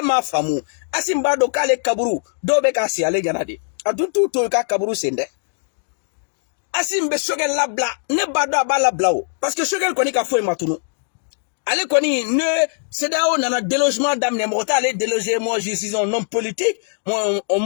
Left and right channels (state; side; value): silent; right; digital silence